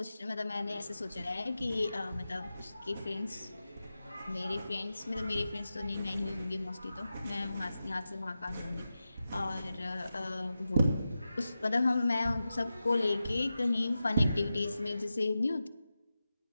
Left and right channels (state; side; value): inverted; both; correlation -0.92